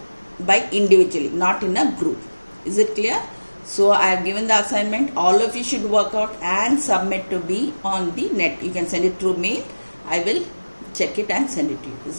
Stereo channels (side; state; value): both; inverted; correlation -1.00